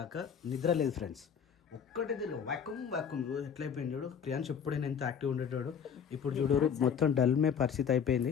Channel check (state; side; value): quieter; right; 7.4 dB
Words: నిద్ర లేదు ఫ్రెండ్స్. ఒక్కటే తిరిగి వ్యాక్యూమ్ ఎట్లయిపోయింది చూడు. క్రియాన్స్ ఎప్పుడైనా ఎంత యాక్టివ్ ఉండేటాడు. ఇప్పుడు చూడు మొత్తం డల్మే పరిస్థితి అయిపోయింది.